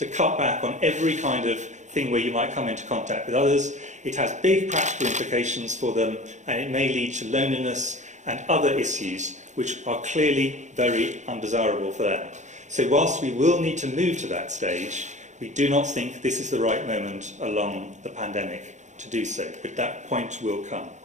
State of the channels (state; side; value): late; left; 0.35 ms